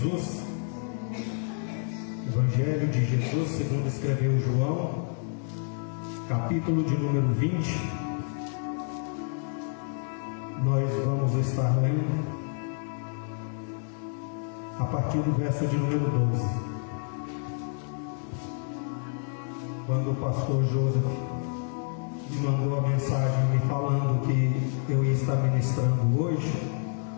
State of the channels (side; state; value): right; silent; 59 dB below the other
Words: Evangelho de Jesus segundo escreveu João, capítulo de número 20. Nós vamos estar lendo a partir do verso de número 12. Quando o pastor Joseph me mandou a mensagem me falando que eu ia estar ministrando hoje,